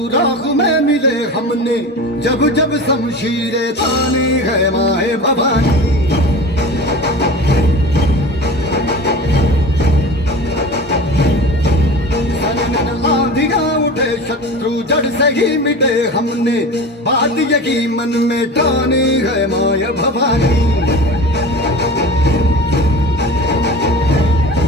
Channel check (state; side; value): normal; both; correlation 0.34